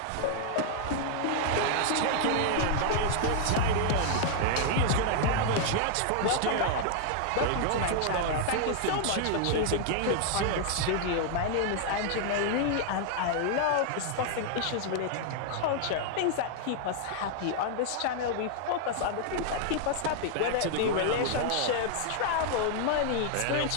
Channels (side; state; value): both; different; correlation 0.00